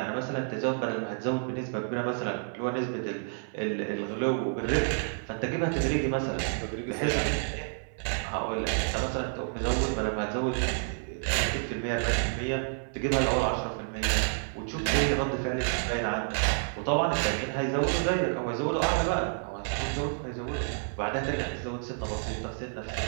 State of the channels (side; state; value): left; silent; 58 dB below the other